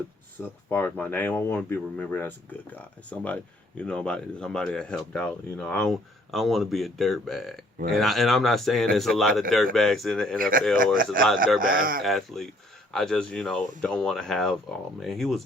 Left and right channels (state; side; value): normal; both; correlation 0.61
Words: far as my name, I want to be remembered as a good guy. Somebody that helped out. I don't want to be a dirtbag. Right. And I'm not saying there's a lot of dirtbags in the NFL or there's a lot of dirtbag athletes. I just don't want to have, oh man, he was